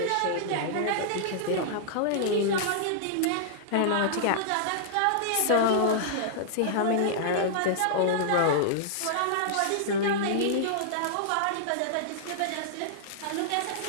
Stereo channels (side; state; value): both; different; correlation -0.01